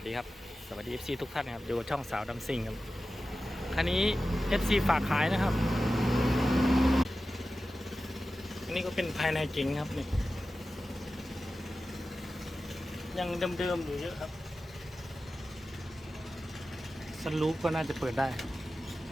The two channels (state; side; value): normal; both; correlation 0.94